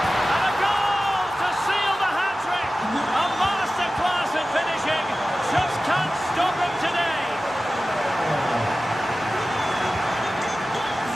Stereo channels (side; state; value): both; normal; correlation 0.95